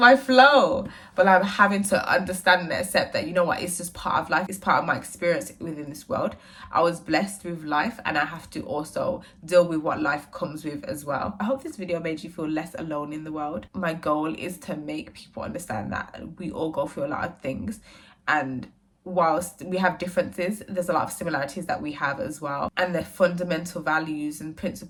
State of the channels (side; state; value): both; identical; correlation 1.00